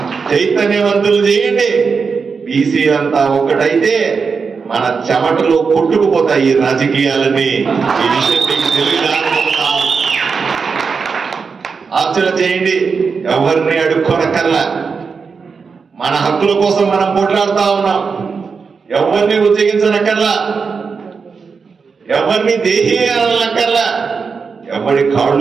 చైతన్యవంతులు చేయండి. బీసీ అంతా ఒక్కటైతే మన చెమటలో కొట్టుకుపోతాయి ఈ రాజకీయాలని. ఈ విషయం మీకు తెలియదా? ఆలోచన చేయండి. ఎవరిని అడుక్కోనక్కర్లా, మన హక్కుల కోసం మనం పోట్లాడుతా ఉన్నాం. ఎవరిని ఉద్యోగించనక్కర్లా, ఎవరిని దేహీ అనక్కర్లా, ఎవరి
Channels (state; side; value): quieter; left; 5.3 dB